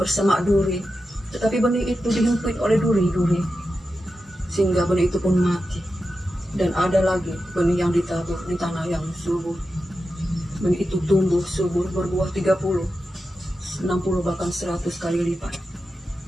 duri, tetapi benih itu dihimpit oleh duri-duri, sehingga benih itu pun mati. Dan ada lagi benih yang ditabur di tanah yang subur. Benih itu tumbuh subur, berbuah 30, 60, bahkan 100 kali lipat.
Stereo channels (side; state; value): both; normal; correlation 0.90